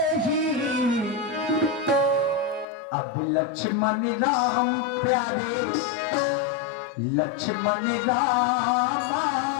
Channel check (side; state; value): right; drops out; at 2.7 s